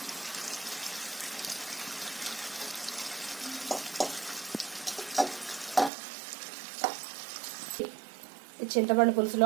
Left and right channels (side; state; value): left; drops out; at 5.9 s